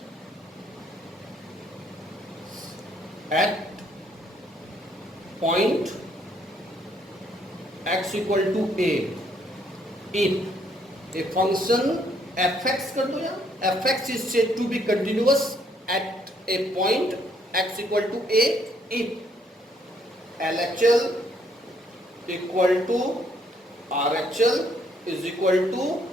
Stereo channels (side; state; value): both; normal; correlation 0.69